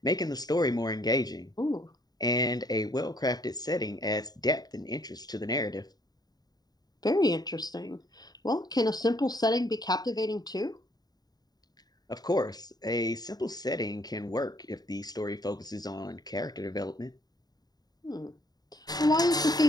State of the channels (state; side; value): late; right; 0.19 ms